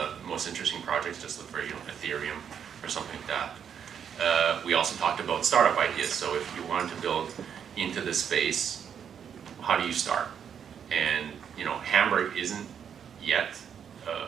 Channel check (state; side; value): quieter; left; 8.0 dB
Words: most interesting projects just look for, Ethereum or something like that. We also talked about startup ideas. So if you wanted to build into this space, how do you start? And Hamburg isn't yet